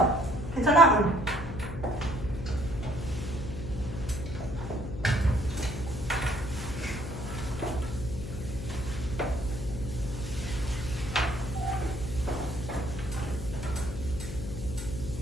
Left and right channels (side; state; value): left; noise; hum, 8 dB below the sound